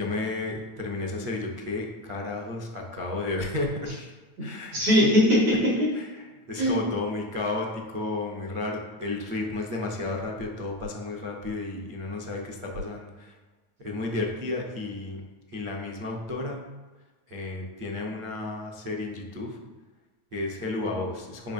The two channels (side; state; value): left; late; 9.1 ms